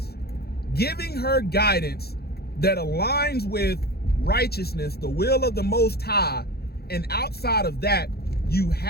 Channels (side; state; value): right; late; 0.46 ms